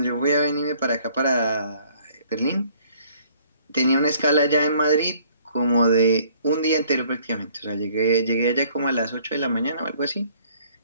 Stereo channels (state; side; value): inverted; both; correlation -0.60